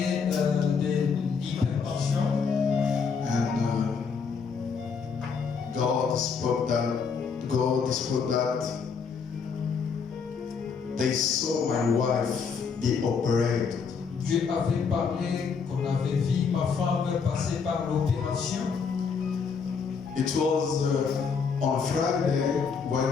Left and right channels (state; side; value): quieter; right; 5.8 dB